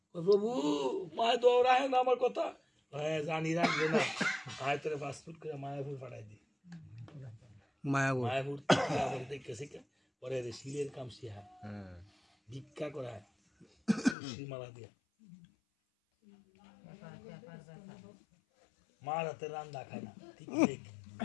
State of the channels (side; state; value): right; drops out; at 14.2 s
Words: প্রভু মায় দৌড়ায় না আমার কথা। জানি রাখবে না, আয় তোরে পাসপোর্ট করে মায়াপুর পাঠাই দি। মায়াপুর দেখেছি পরে শিলের কাম শিহায়, ভিক্ষা করায়, মালা দিয়া মার হাতে রান্না খায় না। ঠিক